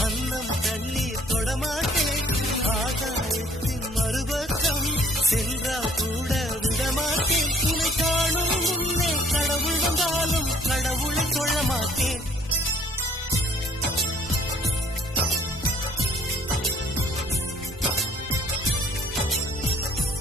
அன்னம் தண்ணீர் தொடமாட்டேன், ஆகாயத்தின் மறுபக்கம் சென்றால் கூட விடமாட்டேன். உன்னை காணும் முன்னே கடவுள் வந்தாலும் கடவுளை கொள்ள மாட்டேன்.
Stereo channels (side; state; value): both; normal; correlation 0.59